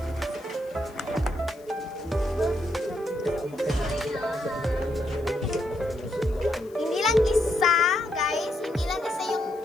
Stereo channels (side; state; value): left; noise; hiss, 28 dB below the sound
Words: Hindi lang isa, guys. Hindi lang isa yung